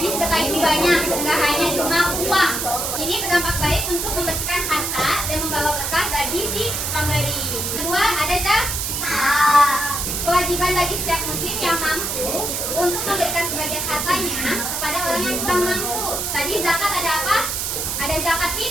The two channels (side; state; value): right; noise; hiss, 2 dB below the sound